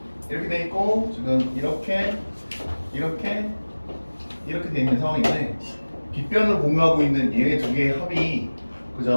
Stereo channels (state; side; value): inverted; both; correlation -1.00